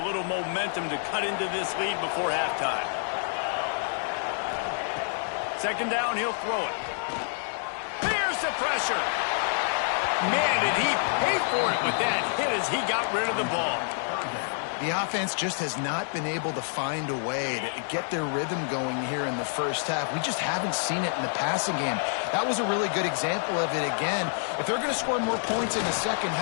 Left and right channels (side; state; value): right; silent; digital silence